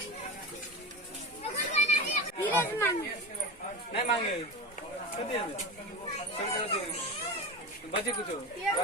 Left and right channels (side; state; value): both; normal; correlation 0.26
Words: नहीं मांगे बचे कुछ